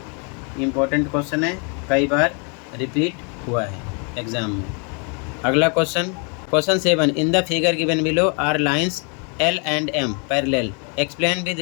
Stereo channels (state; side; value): quieter; right; 36.7 dB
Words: इम्पोर्टेंट क्वेश्चन है, कई बार रिपीट हुआ है एग्जाम में। अगला question 7, in the figure given below are lines L and M parallel, explain with